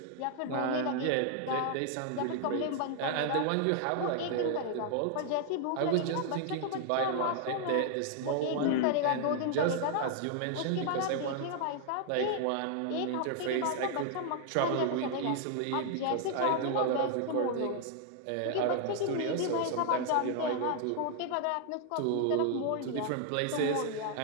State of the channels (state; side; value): different; both; correlation 0.00